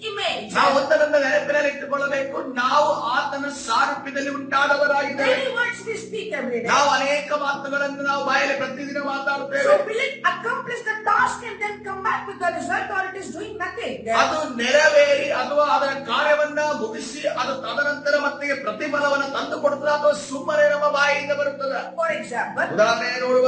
image. ನಾವು ಒಂದರಿಂದ ನೆನಪಿನಲ್ಲಿ ಇಟ್ಟುಕೊಳ್ಳಬೇಕು, ನಾವು ಆತನ ಸಾರೂಪ್ಯದಲ್ಲಿ ಉಂಟಾದವರಾಗಿದ್ದೇವೆ. Many words we speak every day. ನಾವು ಅನೇಕ ಮಾತುಗಳನ್ನು ನಾವು ಬಾಯಲ್ಲಿ ಪ್ರತಿದಿನ ಮಾತಾಡುತ್ತೇವೆ. So will it accomplish the task and then come back with the result, or it is doing nothing? ಅದು ನೆರವೇರಿ ಅಥವಾ ಅದರ ಕಾರ್ಯವನ್ನ ಮುಗಿಸಿ ಅದು ತದನಂತರ ಮತ್ತೆ ಪ್ರತಿಫಲವನ್ನು ತಂದು ಕೊಡುತ್ತದೆ ಅಥವಾ ಸುಮ್ಮನೆ ನಮ್ಮ ಬಾಯಿಯಿಂದ ಬರುತ್ತದೆ. For example, ಉದಾಹರಣೆ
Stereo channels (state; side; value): identical; both; correlation 1.00